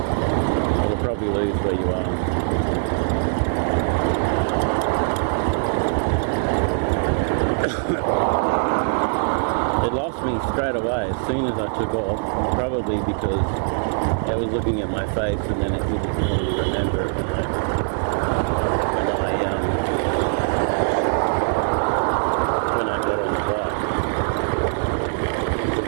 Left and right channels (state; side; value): silent; left; digital silence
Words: You'll probably lose where you are. It lost me straight away as soon as I took off, probably because it was looking at my face and then it didn't really remember it when I got on the bike. Because